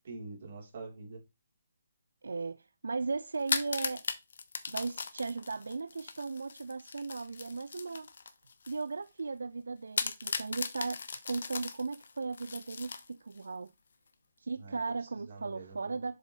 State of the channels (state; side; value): inverted; both; correlation -0.89